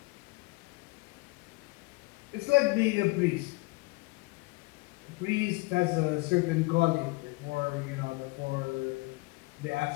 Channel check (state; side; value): quieter; right; 24.8 dB